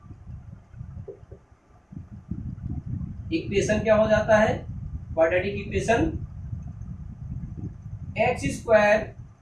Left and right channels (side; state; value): both; identical; correlation 1.00